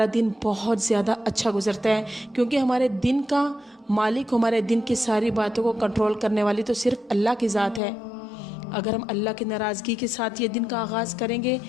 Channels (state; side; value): drops out; right; at 7.8 s